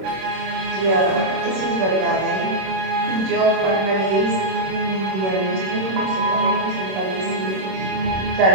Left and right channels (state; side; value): late; left; 26 ms